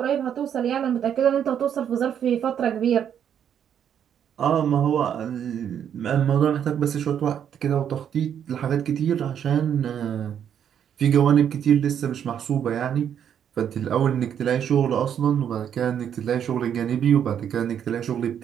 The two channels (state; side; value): quieter; left; 8.9 dB